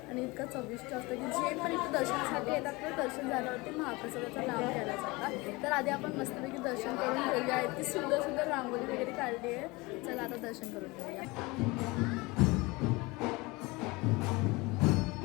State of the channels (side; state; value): right; quieter; 23.8 dB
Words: आणि इतकं चविष्ट असतं की जे पण इथं दर्शनासाठी येतात तर दर्शन झाल्यावरती महाप्रसादाचा लाभ घ्यायला जातात। तर आधी आपण मस्तपैकी दर्शन करून घेऊया। इतकी सुंदर सुंदर रांगोळी वगैरे काढली आहे। चला आता दर्शन करून घेऊया।